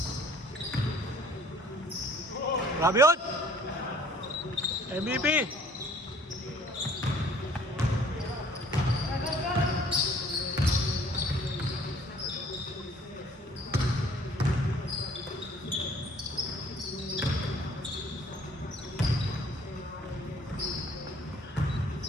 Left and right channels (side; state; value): both; normal; correlation 0.55